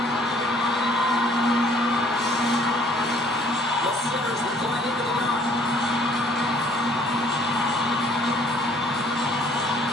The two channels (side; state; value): both; normal; correlation 0.59